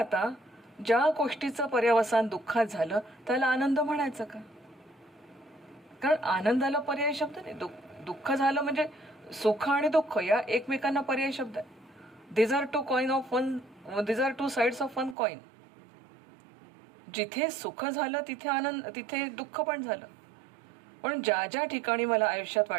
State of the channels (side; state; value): left; drops out; at 15.2 s